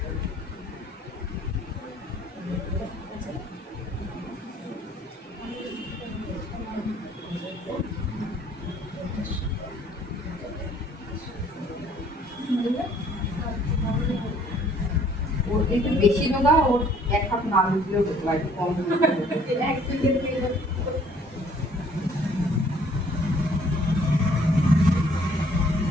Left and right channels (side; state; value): both; normal; correlation 0.59